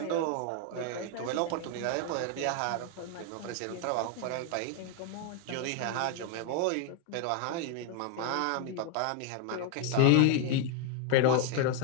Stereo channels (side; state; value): both; different; correlation 0.01